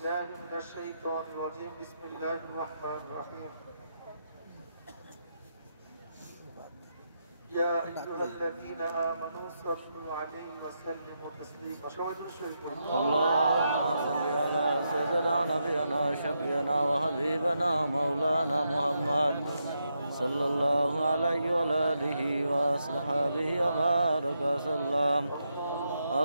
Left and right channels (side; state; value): both; inverted; correlation -0.83